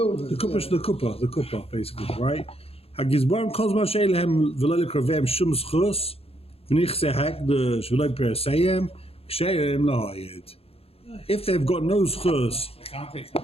the kupa, basically, right? A gizbarim kozman sheilehem v'lele kravem shum schus, v'nich sehek the shv'lei peraseyem, ksheirem lahayid. If they've got no schus I can't take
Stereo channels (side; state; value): right; late; 0.28 ms